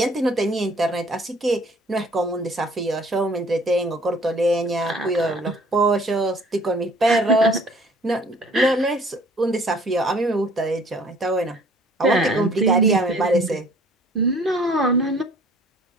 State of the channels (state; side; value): normal; both; correlation 0.55